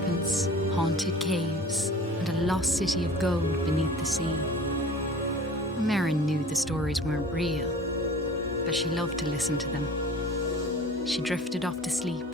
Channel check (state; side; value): normal; both; correlation 0.42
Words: haunted caves, and a lost city of gold beneath the sea. Merrin knew the stories weren't real, but she loved to listen to them. She drifted off to sleep,